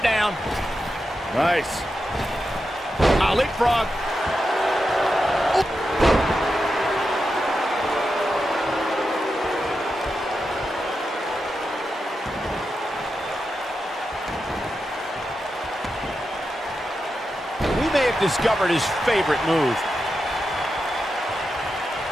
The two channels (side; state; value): both; normal; correlation 0.88